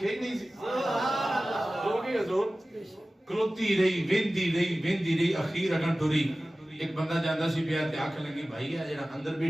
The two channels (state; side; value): normal; both; correlation 0.97